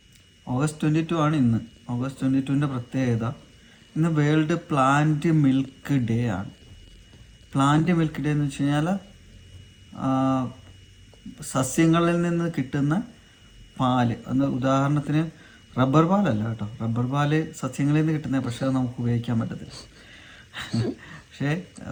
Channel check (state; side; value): identical; both; correlation 1.00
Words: ഓഗസ്റ്റ് 22 ആണ് ഇന്ന്. ഓഗസ്റ്റ് 22 പ്രത്യേകത ഇന്ന് വേൾഡ് പ്ലാന്റ് മിൽക്ക് ഡേ ആണ്. പ്ലാന്റ് മിൽക്ക് ഡേ എന്ന് വെച്ച് കഴിഞ്ഞാൽ സസ്യങ്ങളിൽ നിന്ന് കിട്ടുന്ന പാല്. ഉദാഹരണത്തിന് റബ്ബർ പാലല്ല കേട്ടോ, റബ്ബർ പാല് സസ്യങ്ങളിൽ നിന്ന് കിട്ടുന്ന, പക്ഷേ അത് നമുക്ക് ഉപയോഗിക്കാൻ പറ്റത്തില്ല. പക്ഷേ